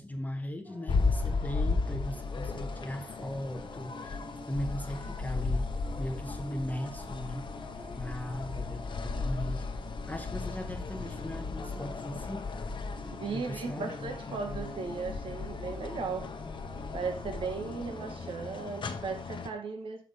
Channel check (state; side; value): normal; both; correlation 0.79